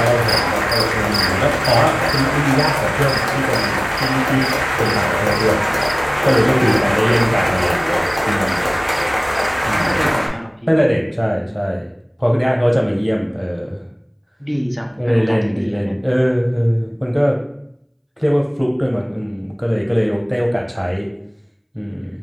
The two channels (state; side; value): identical; both; correlation 1.00